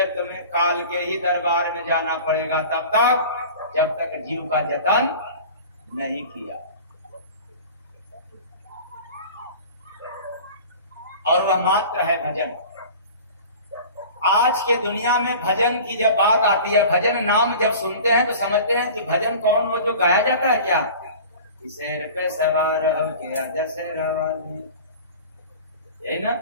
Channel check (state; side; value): inverted; both; correlation -0.40